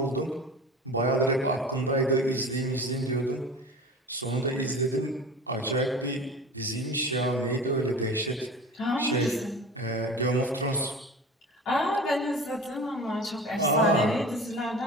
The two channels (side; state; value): both; normal; correlation 0.36